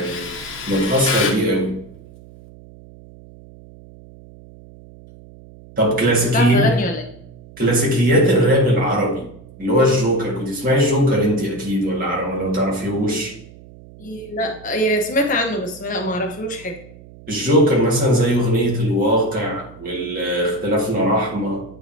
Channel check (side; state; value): right; noise; hum, 21 dB below the sound